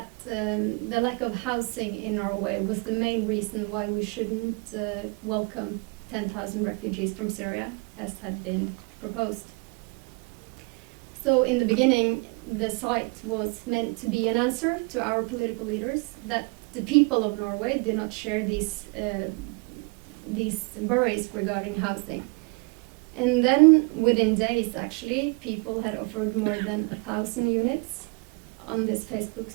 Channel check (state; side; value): quieter; left; 30.8 dB